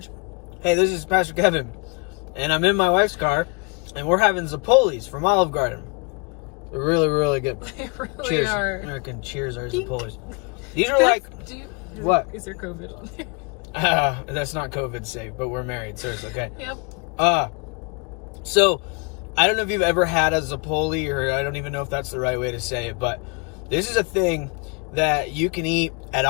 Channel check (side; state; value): right; quieter; 32.5 dB